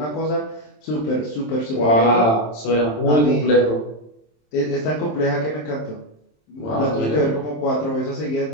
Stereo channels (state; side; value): late; right; 27 ms